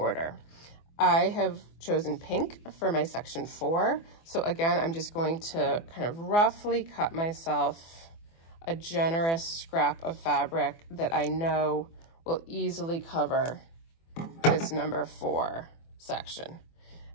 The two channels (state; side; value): late; right; 24 ms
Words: I have chosen pink for my section 4. So again, I'm just going to kind of roughly cut myself a generous scrap of fabric that I know will easily cover this number 4 section.